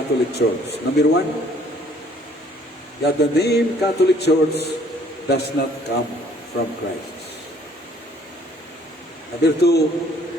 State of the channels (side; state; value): both; normal; correlation 0.59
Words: Church. Number one, that the name Catholic Church does not come from Christ. Number two,